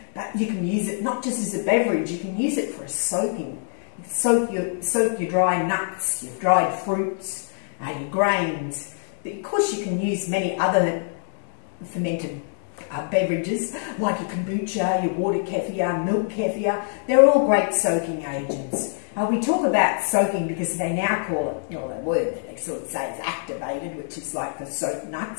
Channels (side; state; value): right; silent; digital silence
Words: But you can use it not just as a beverage, you can use it for a soaking. Soak your dry nuts, your dried fruits, your grains. But of course you can use many other fermented beverages like your kombucha, your water kefir, milk kefir. They're all great soaking agents. We talk about soaking because they now call it, the word that they sort of say is activated, which is like the soaked